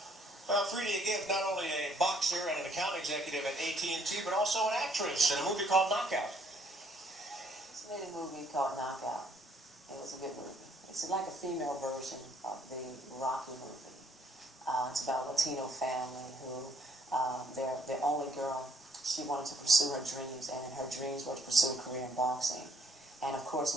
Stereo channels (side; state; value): both; normal; correlation 0.65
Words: Well, Fredia Gibbs, not only a boxer and an account executive at AT&T, but also an actress in a movie called Knockout. It's made a movie called Knockout. It was a good movie. It's like a female version of the Rocky movie. It's about a Latino family who, their only girl, she wanted to pursue her dreams, and her dreams were to pursue a career in boxing. And of